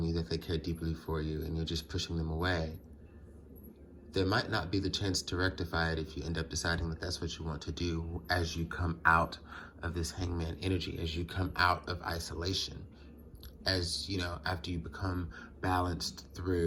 you that they care deeply for you and you're just pushing them away, there might not be the chance to rectify it if you end up deciding that that's what you want to do as you come out of this hangman energy, as you come out of isolation, as, you know, after you become balanced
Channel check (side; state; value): both; identical; correlation 1.00